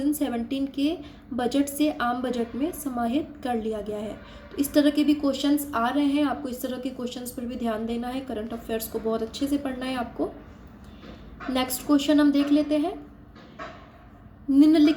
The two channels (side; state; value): both; identical; correlation 1.00